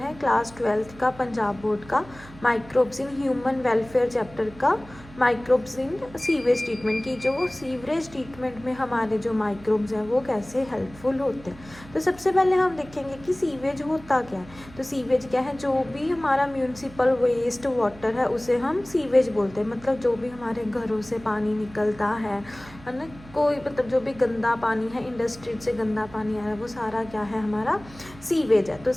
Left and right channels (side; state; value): right; noise; hum, 19 dB below the sound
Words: class 12th का पंजाब बोर्ड का microbes in human welfare chapter का माइक्रोब्स इन सीवेज ट्रीटमेंट की। जो सीवरेज ट्रीटमेंट में हमारे जो माइक्रोब्स हैं वो कैसे हेल्पफुल होते हैं। तो सबसे पहले हम देखेंगे कि सीवेज होता क्या है। तो सीवेज क्या है, जो भी हमारा म्यूनसिपल वेस्ट वाटर है उसे हम सीवेज बोलते हैं। मतलब जो भी हमारे घरों से पानी निकलता है ना, कोई मतलब जो भी गंदा पानी है, इंडस्ट्री से गंदा पानी आ रहा है, वो सारा क्या है हमारा सीवेज है। तो